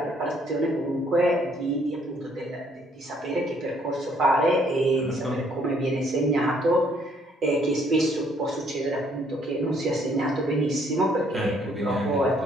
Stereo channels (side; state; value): both; normal; correlation 0.66